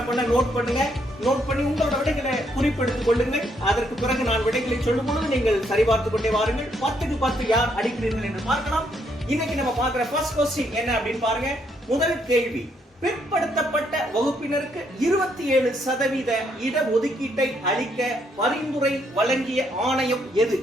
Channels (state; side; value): normal; both; correlation 0.73